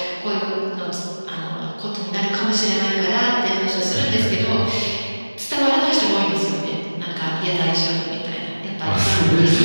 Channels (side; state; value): both; inverted; correlation -1.00